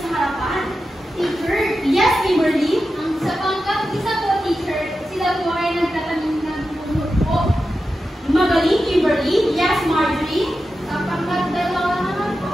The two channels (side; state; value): both; normal; correlation 0.91